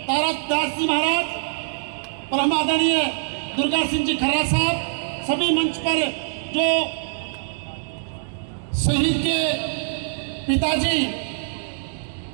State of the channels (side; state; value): left; silent; digital silence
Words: तारक दास जी महाराज, परम आदरणीय दुर्गा सिंह जी खर्रा साहब, सभी मंच पर जो शहीद के पिताजी